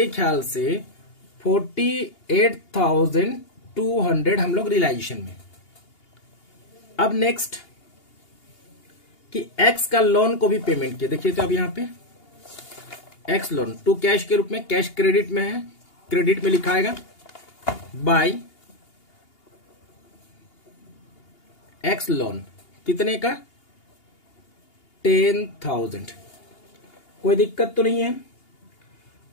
ख्याल से 48,200 हम लोग रियलाइजेशन में। अब नेक्स्ट कि एक्स का लोन को भी पेमेंट किया। देखिए तो अब यहां पे एक्स लोन टू कैश के रूप में, कैश क्रेडिट में है, क्रेडिट में लिखाएगा बाय एक्स लोन कितने का? 10,000। कोई दिक्कत तो नहीं है।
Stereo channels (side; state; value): right; late; 2.8 ms